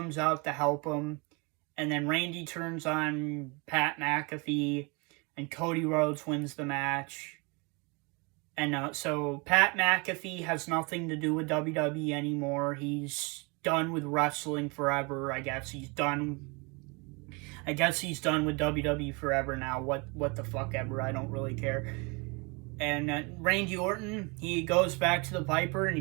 out to help him. And then Randy turns on Pat McAfee, and Cody Rhodes wins the match. And so Pat McAfee has nothing to do with WWE anymore. He's done with wrestling forever. I guess he's done with WWE forever now. What the fuck ever. I don't really care. And Randy Orton, he goes back to the Viper and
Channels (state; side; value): quieter; left; 29.6 dB